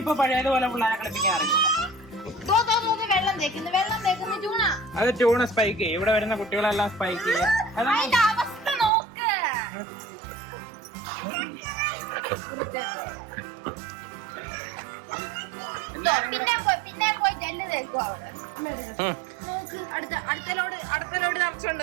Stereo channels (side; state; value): left; drops out; at 8.9 s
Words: ഇപ്പൊ പഴയതുപോലെ പിള്ളേരെ കളിപ്പിക്കാൻ അറിയില്ല. അത് ചൂണ സ്പൈക്ക് ചെയ്യും. ഇവിടെ വരുന്ന കുട്ടികളെല്ലാം സ്പൈക്ക് ചെയ്യും.